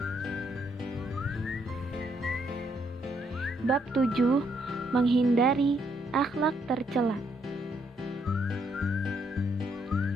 bab 7, menghindari akhlak tercela.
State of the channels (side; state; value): both; normal; correlation 0.73